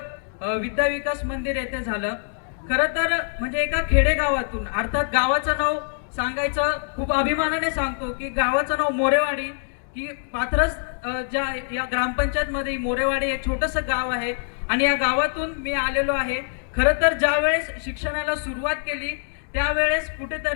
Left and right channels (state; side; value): silent; right; digital silence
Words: विद्या विकास मंदिर येथे झालं। खरं तर म्हणजे एका खेडेगावातून, अर्थात गावाचं नाव सांगायचं खूप अभिमानाने सांगतो की गावाचं नाव मोरेवाडी, की पाथरस ज्या या ग्रामपंचायत मध्ये मोरेवाडी एक छोटंसं गाव आहे आणि या गावातून मी आलेलो आहे। खरं तर ज्या वेळेस शिक्षणाला सुरुवात केली त्यावेळेस